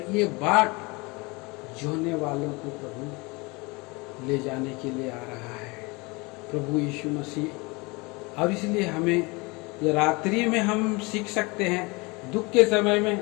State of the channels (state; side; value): quieter; right; 26.3 dB